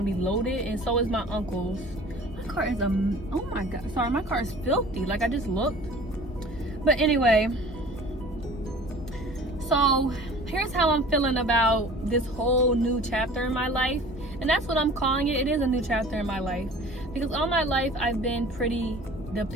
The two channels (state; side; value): normal; both; correlation 0.45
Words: be loaded, and so is my uncle's. My car is oh my god, sorry, my car is filthy. Like, I just looked. But anyway, so here's how I'm feeling about this whole new chapter in my life, and that's what I'm calling it. It is a new chapter in my life, because all my life I've been pretty